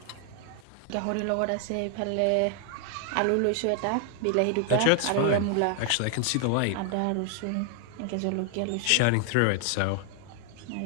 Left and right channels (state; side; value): different; both; correlation 0.00